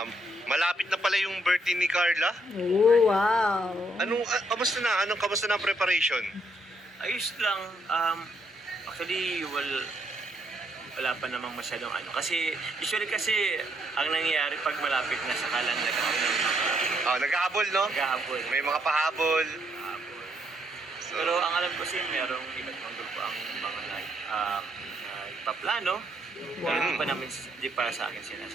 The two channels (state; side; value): normal; both; correlation 0.74